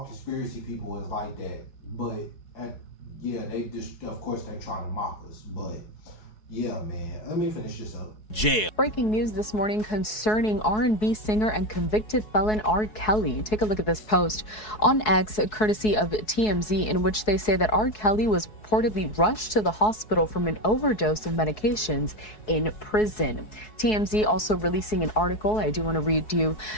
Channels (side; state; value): right; late; 4.7 ms